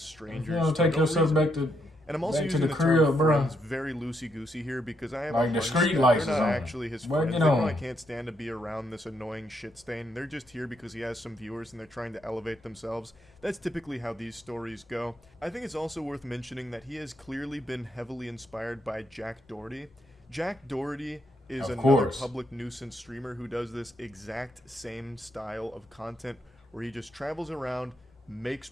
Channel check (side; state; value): both; normal; correlation 0.77